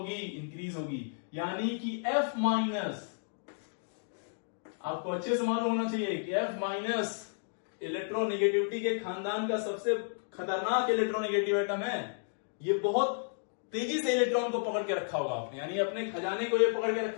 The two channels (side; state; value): right; silent; digital silence